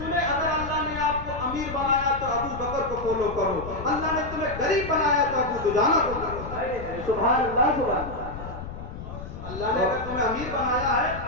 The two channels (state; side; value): noise; left; rumble, 10 dB below the sound